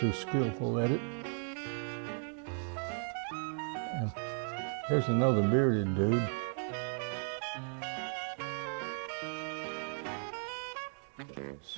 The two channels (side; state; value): left; silent; 54 dB below the other